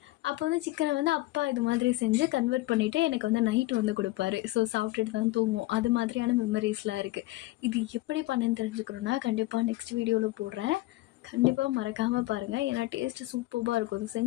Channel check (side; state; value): right; quieter; 18.9 dB